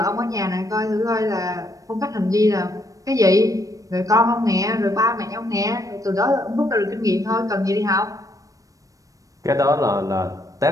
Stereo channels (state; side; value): late; left; 0.16 ms